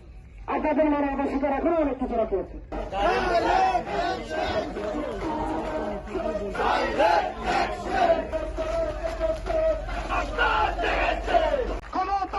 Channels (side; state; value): both; identical; correlation 1.00